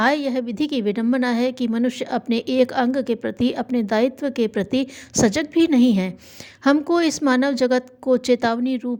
यह विधि की विडंबना है कि मनुष्य अपने एक अंग के प्रति, अपने दायित्व के प्रति सजग भी नहीं है। हमको इस मानव जगत को चेतावनी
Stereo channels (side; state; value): both; identical; correlation 1.00